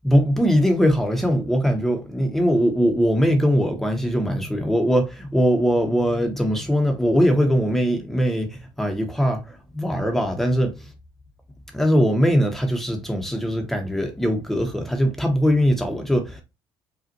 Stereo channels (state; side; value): normal; both; correlation 0.90